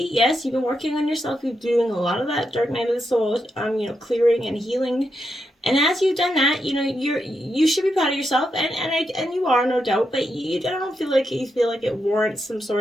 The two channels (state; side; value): normal; both; correlation 0.84